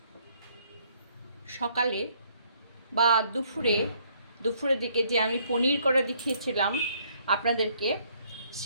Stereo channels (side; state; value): both; inverted; correlation -0.66